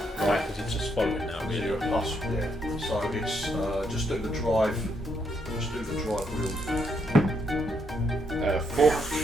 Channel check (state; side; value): normal; both; correlation 0.76